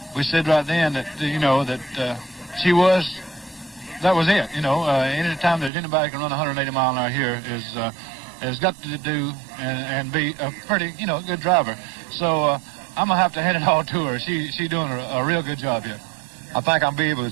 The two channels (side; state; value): left; drops out; at 5.7 s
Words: We said right then that, you know, that that was it. You know, any time that anybody can run 180 mile an hour here has got to do and be a pretty, you know, good driver. So I'm going to have to hand it all to her. She's doing a real good job here. I think I'll be able